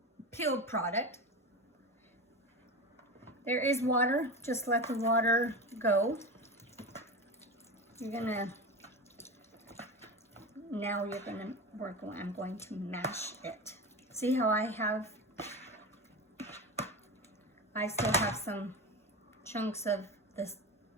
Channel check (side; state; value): both; normal; correlation 0.24